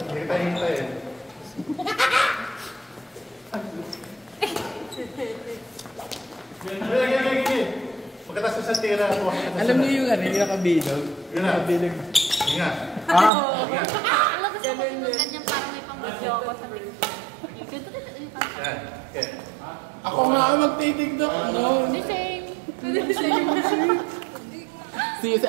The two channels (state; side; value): drops out; left; at 13.3 s